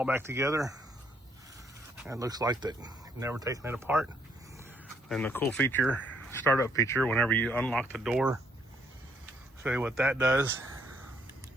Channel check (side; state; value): both; normal; correlation 0.69